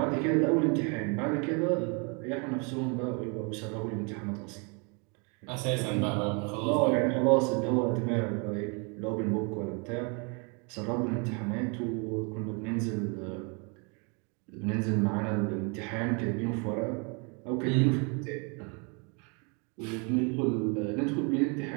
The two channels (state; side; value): quieter; left; 34.0 dB